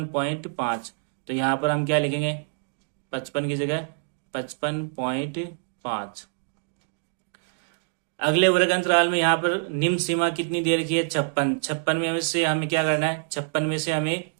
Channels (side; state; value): left; silent; digital silence